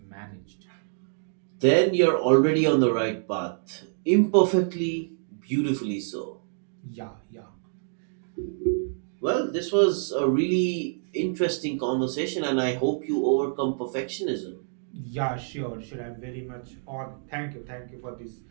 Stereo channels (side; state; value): left; silent; digital silence